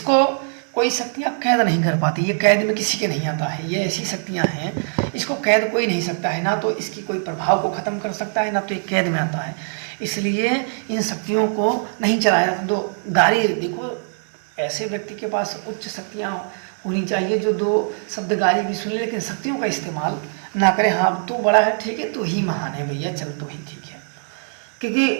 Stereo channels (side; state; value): left; silent; digital silence